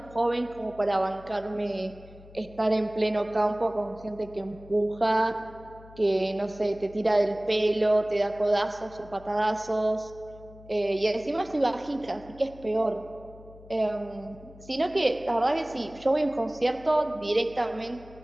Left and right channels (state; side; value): noise; left; hum, 20 dB below the sound